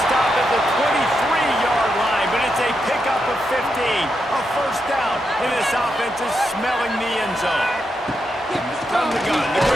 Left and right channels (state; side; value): normal; both; correlation 0.84